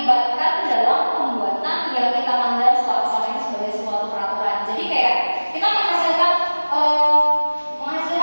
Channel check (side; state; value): both; inverted; correlation -1.00